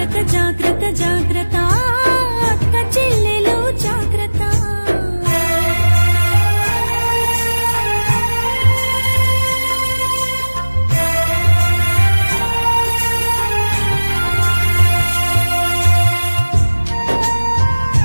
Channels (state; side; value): inverted; both; correlation -1.00